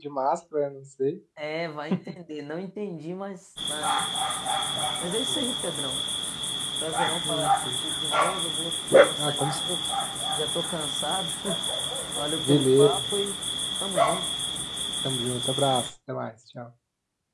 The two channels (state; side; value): identical; both; correlation 1.00